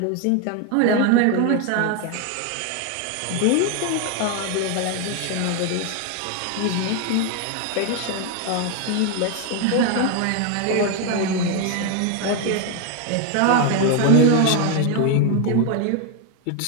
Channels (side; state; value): both; different; correlation 0.01